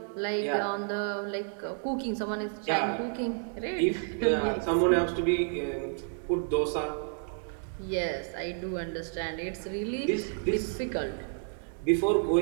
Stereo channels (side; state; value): left; silent; 58 dB below the other